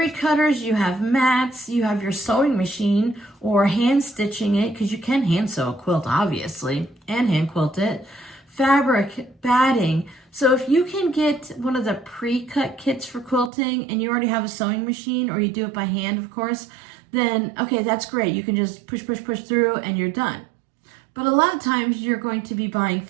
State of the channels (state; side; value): drops out; left; at 13.5 s